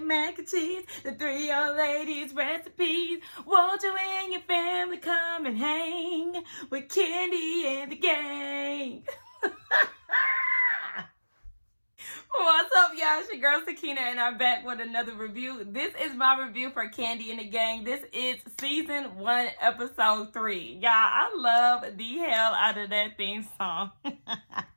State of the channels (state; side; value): inverted; both; correlation -1.00